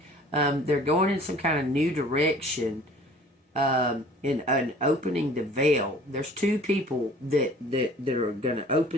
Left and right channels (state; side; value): normal; both; correlation 0.50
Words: they're going in some kind of new direction. In opening the veil. There's two people that are going to